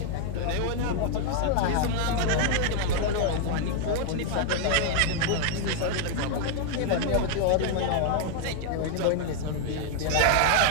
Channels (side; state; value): both; different; correlation 0.00